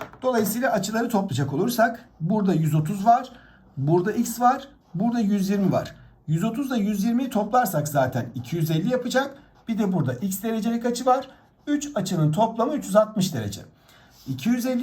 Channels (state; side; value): identical; both; correlation 1.00